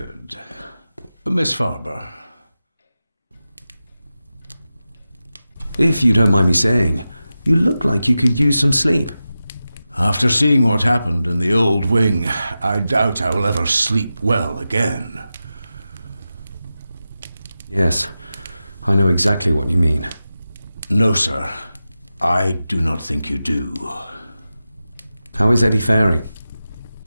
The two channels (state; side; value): inverted; both; correlation -0.93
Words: Miss Farber. If you don't mind me saying, you look like you could use some sleep. After seeing what happened in the old wing, I doubt I will ever sleep well again. Yes, I know exactly what you mean. No, sir. I do not think you do. How is Eddie faring?